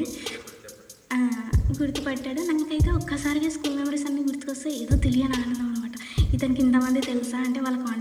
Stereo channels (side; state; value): both; identical; correlation 1.00